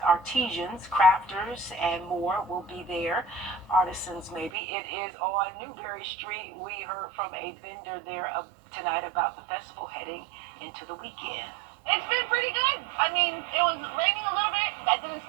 crafters, and more will be there. Artisans, maybe. It is on Newberry Street. We heard from a vendor there tonight about the festival heading into the weekend. It's been pretty good. I mean, it was raining a little bit. That didn't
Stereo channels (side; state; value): left; drops out; at 4.5 s